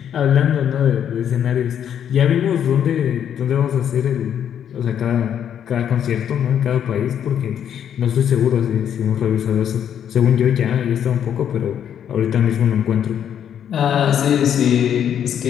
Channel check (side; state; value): right; quieter; 9.1 dB